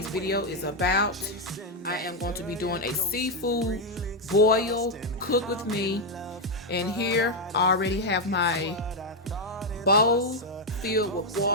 video is about, I am going to be doing a seafood boil cook with me. And here I already have my bowl filled with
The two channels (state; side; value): normal; both; correlation 0.02